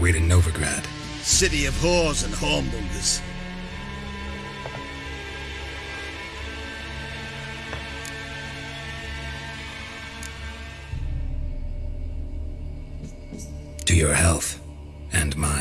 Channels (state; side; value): identical; both; correlation 1.00